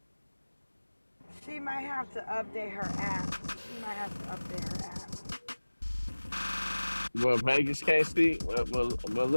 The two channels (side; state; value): both; inverted; correlation -1.00